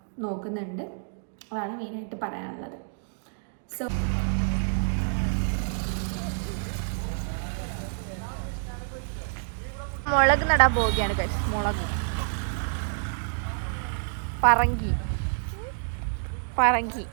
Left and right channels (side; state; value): left; silent; digital silence